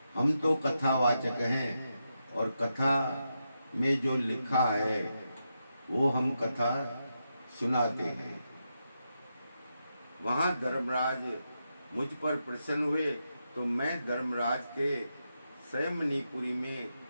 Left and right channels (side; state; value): both; inverted; correlation -0.86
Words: हम तो कथावाचक हैं और कथा में जो लिखा है वो हम कथा सुनाते हैं। वहाँ धर्मराज मुझ पर प्रसन्न हुए तो मैं धर्मराज के मणिपुरी में